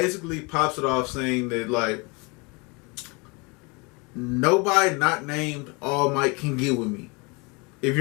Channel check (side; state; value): right; quieter; 28.9 dB